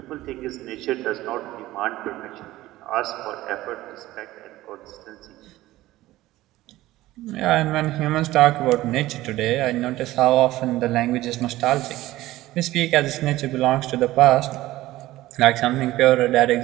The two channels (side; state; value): left; quieter; 16.6 dB